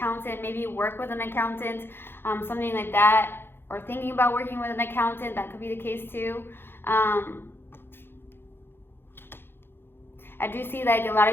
maybe you work with an accountant, something like that, or thinking about working with an accountant. That could be the case too. I do see like a lot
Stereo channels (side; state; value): right; late; 0.11 ms